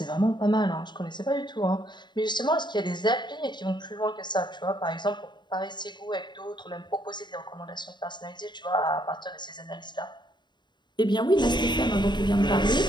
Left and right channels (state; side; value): late; right; 0.22 ms